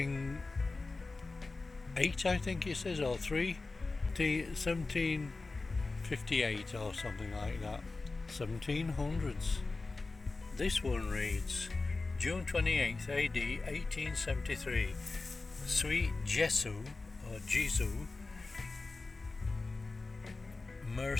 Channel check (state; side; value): quieter; right; 3.6 dB